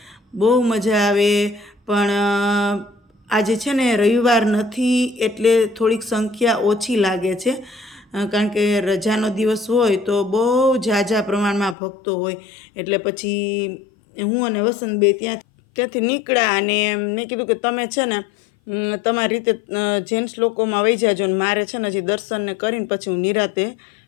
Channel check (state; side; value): drops out; right; at 11.8 s